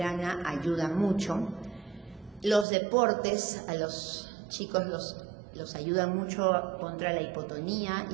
ayuda mucho. Los deportes a los chicos los ayudan mucho contra la hipotonía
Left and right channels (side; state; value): left; drops out; at 2.7 s